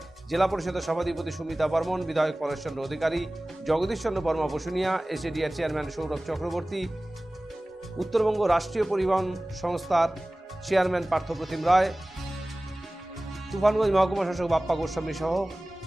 জেলা পরিষদের সভাধিপতি সুমিতা বর্মন, বিধায়ক পরেশচন্দ্র অধিকারী, জগদীশচন্দ্র বর্মা বসুনিয়া, এসএডিআর চেয়ারম্যান সৌরভ চক্রবর্তী, উত্তরবঙ্গ রাষ্ট্রীয় পরিবহন সংস্থার চেয়ারম্যান পার্থপ্রতিম রায়, তুফানগঞ্জ মহকুমা শাসক বাপ্পা গোস্বামী সহ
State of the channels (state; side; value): normal; both; correlation 0.98